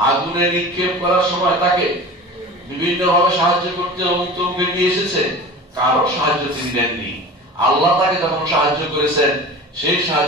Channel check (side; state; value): both; normal; correlation 0.36